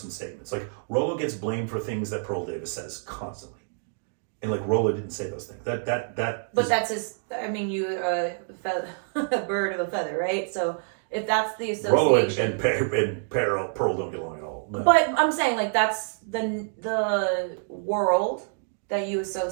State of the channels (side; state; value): left; silent; 60 dB below the other